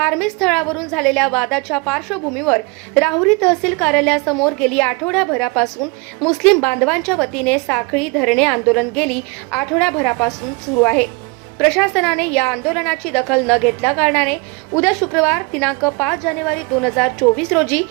स्थळावरून झालेल्या वादाच्या पार्श्वभूमीवर राहुरी तहसील कार्यालयासमोर गेली आठवड्याभरापासून मुस्लिम बांधवांच्या वतीने साखळी धरणे आंदोलन गेली आठवड्याभरापासून सुरू आहे. प्रशासनाने या आंदोलनाची दखल न घेतल्या कारणाने उद्या शुक्रवार दिनांक 5 जानेवारी 2024 रोजी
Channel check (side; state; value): left; quieter; 26.8 dB